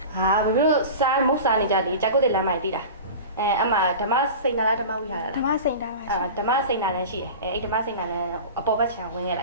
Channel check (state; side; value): inverted; both; correlation -0.33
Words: ဟာဘေးတို့စားမုတ်စားနေကြတယ်ကြာကုတ်တဲ့လမ်းမိုက်တီးတာအမဓမ္မစိန်နာလားဓမ္မဝိဟာရ ဓမ္မစိန်တာပါရှင် ဓမ္မစိန်နာလည်းရှိတယ်အဲ့ဓမ္မစိန်နာလည်းအပေါ်ဘက်ခြံဝင်ခဲ့လ